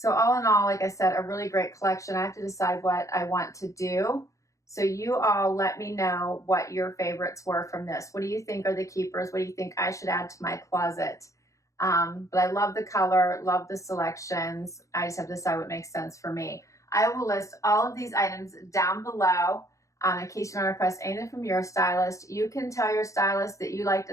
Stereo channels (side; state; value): right; late; 0.15 ms